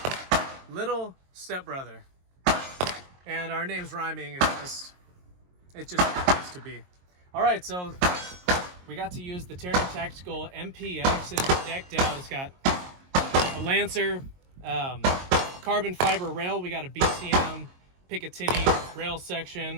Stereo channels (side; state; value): left; late; 22 ms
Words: little stepbrother. And our names rhyming is it just happens to be. Alright, so we got to use the Taran Tactical MPX. It is decked out. It's got a Lancer, carbon fiber rail. We got a BCM, Picatinny rail